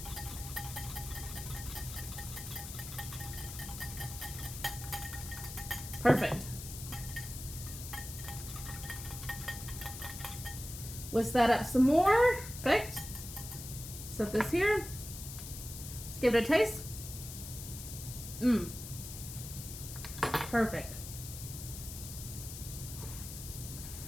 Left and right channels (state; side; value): noise; left; hiss, 10 dB below the sound